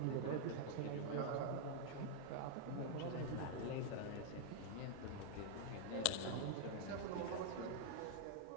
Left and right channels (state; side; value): different; both; correlation -0.01